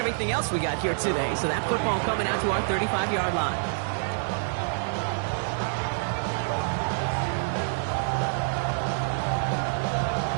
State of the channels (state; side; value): silent; left; digital silence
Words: else we got here today. So that football coming out to our 35-yard line.